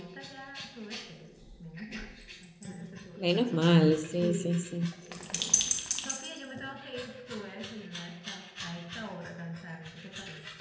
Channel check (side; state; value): both; identical; correlation 1.00